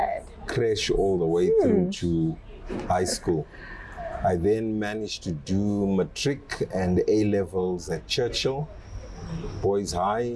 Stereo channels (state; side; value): identical; both; correlation 1.00